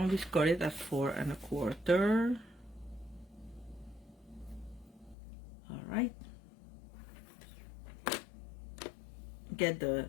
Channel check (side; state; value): right; drops out; at 5.2 s